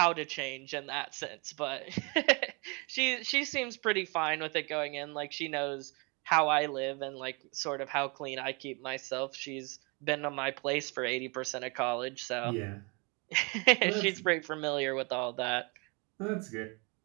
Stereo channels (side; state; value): left; quieter; 30.9 dB